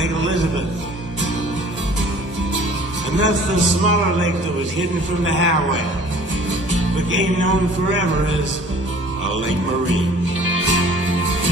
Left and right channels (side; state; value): both; normal; correlation 0.50